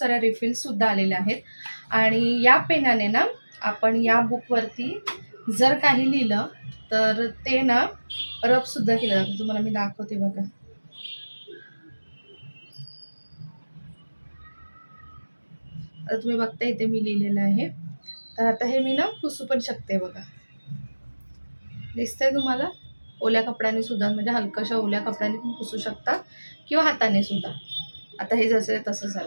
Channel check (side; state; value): both; inverted; correlation -1.00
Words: रिफिल्ससुद्धा आलेल्या आहेत आणि या पेनाने आपण या बुकवरती जर काही लिहिलं तर ते रबसुद्धा केलं जातं. तुम्हाला मी दाखवते बघा. आता तुम्ही बघता इथे मी लिहिलेलं आहे. तर आता हे मी पुसू पण शकते बघा. दिसतंय तुम्हाला? ओल्या कपड्याने सुद्धा म्हणजे हलकाशा ओल्या कपड्याने पण पुसू शकता किंवा हाताने सुद्धा. आता हे जसं आहे तसं